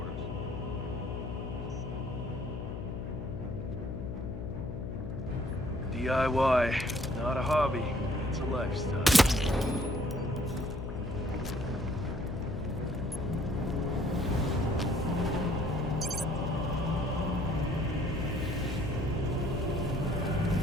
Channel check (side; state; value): left; noise; hum, 6 dB below the sound